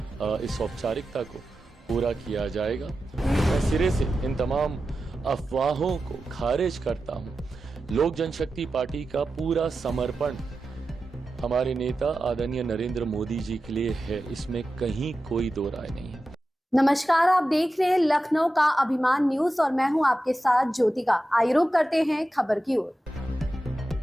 इस औपचारिकता को पूरा किया जाएगा। मैं सिरे से इन तमाम अफवाहों को खारिज करता हूं। लोक जनशक्ति पार्टी का पूरा समर्पण हमारे नेता आदरणीय नरेंद्र मोदी जी के लिए है, इसमें कहीं कोई दो राय नहीं है। नमस्कार, आप देख रहे हैं लखनऊ का अभिमान न्यूज और मैं हूं आपके साथ ज्योतिका। आइए रुक करते हैं खबर की ओर।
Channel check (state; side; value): normal; both; correlation 0.92